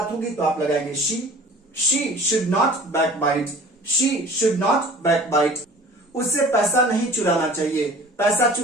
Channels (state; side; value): normal; both; correlation 0.45